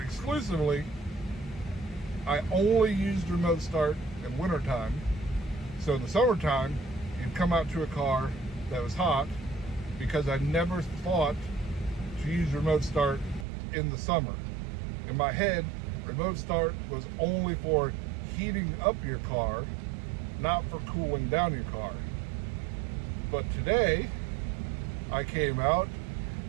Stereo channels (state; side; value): drops out; left; at 13.5 s